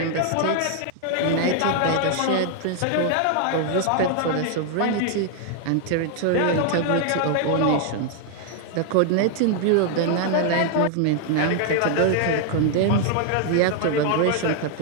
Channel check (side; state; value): both; different; correlation 0.00